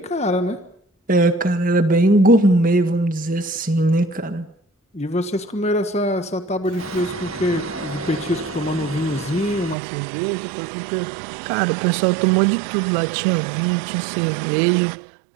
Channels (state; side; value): drops out; left; at 9.8 s